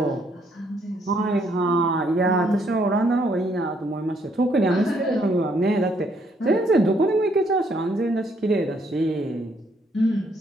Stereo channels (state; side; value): normal; both; correlation 0.70